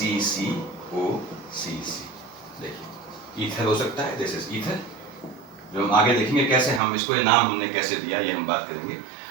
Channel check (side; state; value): left; drops out; at 6.8 s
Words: देखिए ईथर हो सकता है, दिस इज ईथर, जो हम आगे देखेंगे कैसे हम इसको, ये नाम हमने कैसे दिया ये हम बात करेंगे।